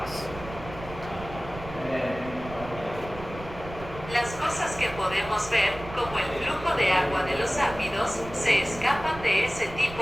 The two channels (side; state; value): right; noise; rumble, 13 dB below the sound